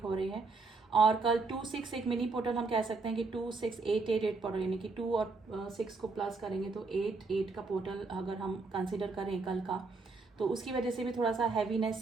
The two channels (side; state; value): left; quieter; 3.9 dB